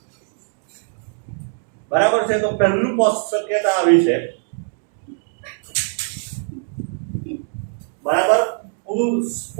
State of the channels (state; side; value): silent; left; 56 dB below the other